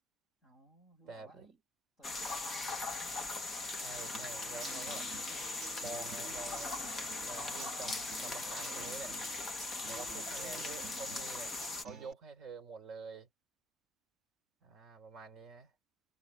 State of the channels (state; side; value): normal; both; correlation 0.69